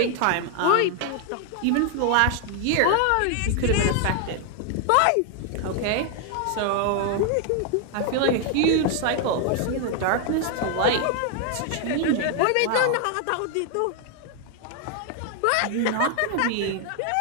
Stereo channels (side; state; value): both; different; correlation 0.00